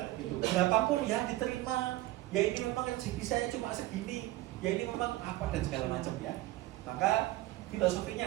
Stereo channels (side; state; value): left; quieter; 17.4 dB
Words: gitu. Berapapun ya diterima. Ya ini memang rezeki saya cuma segini, ya ini memang apa dan segala macam ya. Maka